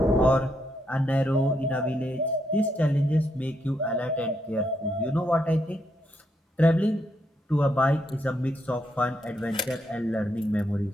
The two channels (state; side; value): normal; both; correlation 0.78